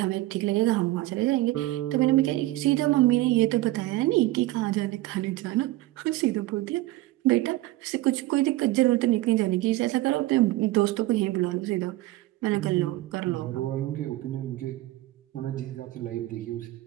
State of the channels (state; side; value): quieter; left; 17.5 dB